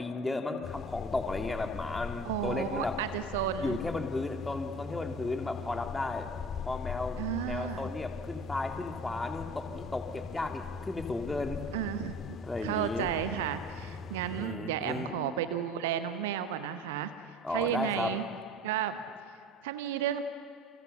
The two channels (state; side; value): normal; both; correlation 0.42